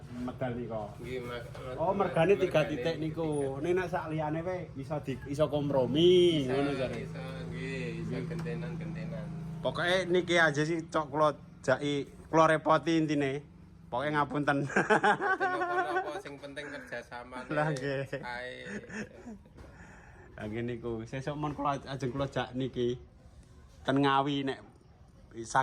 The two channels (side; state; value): both; identical; correlation 1.00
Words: medal niku. Nggih, Oh, mergane 3 titik niku. Nek sak liyane wae iso kompromi ngono jare. Iso gentenan-gentenan. Pokoke niki aja sih cok kula repoti intine. Pokoke ngapunten. Apa sing penting kerjasama. Lah nggih. Ae. Lah niku sesuk mon kula ajeng kula jak niki ten Ngawi nek